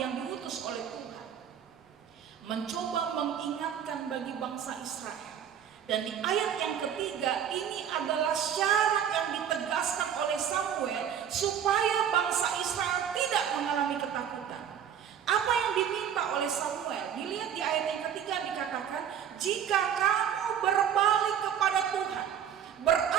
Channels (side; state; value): left; quieter; 8.9 dB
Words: diutus oleh Tuhan mencoba mengingatkan bagi bangsa Israel. Dan di ayat yang ketiga ini adalah syarat yang ditegaskan oleh Samuel supaya bangsa Israel tidak mengalami ketakutan. Apa yang diminta oleh Samuel? Dilihat di ayat yang ketiga dikatakan, jika kamu berbalik kepada Tuhan.